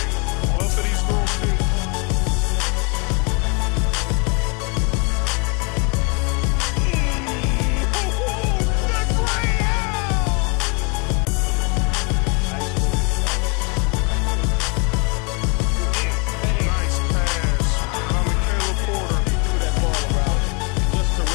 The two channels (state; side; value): quieter; right; 32.6 dB